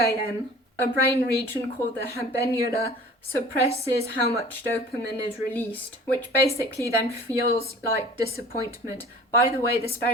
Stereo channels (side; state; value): both; normal; correlation 0.45